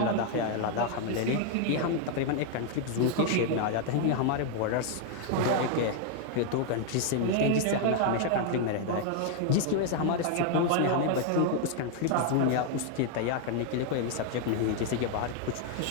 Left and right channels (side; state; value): both; different; correlation 0.00